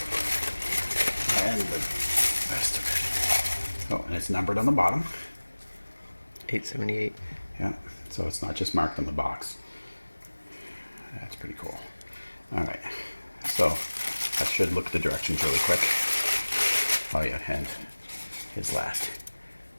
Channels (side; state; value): both; inverted; correlation -1.00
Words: And the rest of it. Oh, and it's numbered on the bottom. 878. Yeah, so it's not just marked on the box. That's pretty cool. All right, so I should look at the directions really quick. Oh yeah, and his last